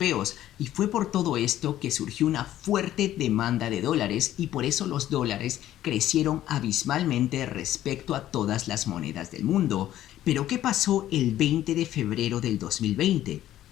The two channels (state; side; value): quieter; right; 13.0 dB